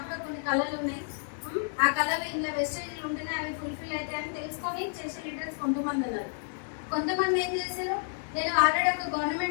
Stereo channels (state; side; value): silent; right; 58 dB below the other